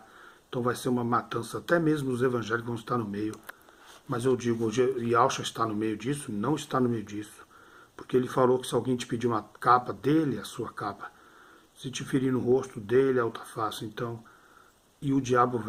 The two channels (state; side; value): identical; both; correlation 1.00